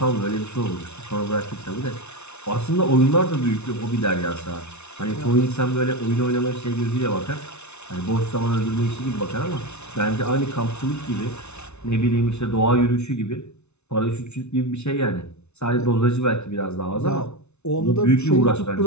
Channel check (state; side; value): late; right; 0.81 ms